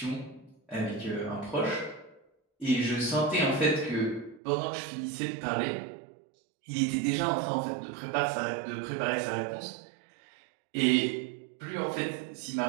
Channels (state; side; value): drops out; left; at 4.4 s